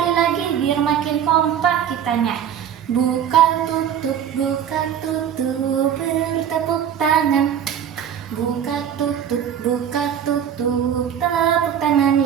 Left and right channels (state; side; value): quieter; left; 9.0 dB